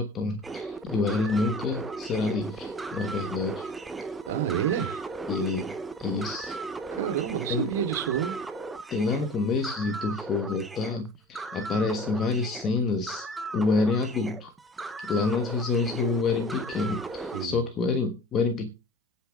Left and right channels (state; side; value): normal; both; correlation 0.40